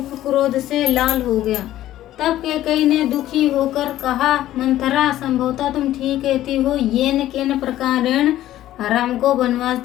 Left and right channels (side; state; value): right; quieter; 13.7 dB